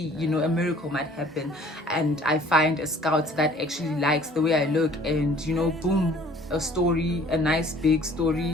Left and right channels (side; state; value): both; normal; correlation 0.53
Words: a miracle might happen, and I find a scout that actually likes the way I look, and boom, a story, a nice big